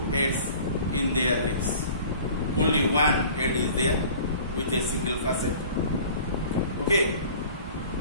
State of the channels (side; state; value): both; inverted; correlation -0.46